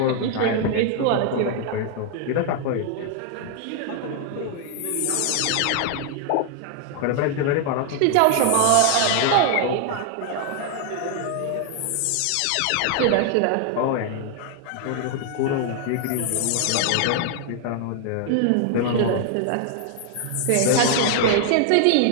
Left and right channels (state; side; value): different; both; correlation 0.00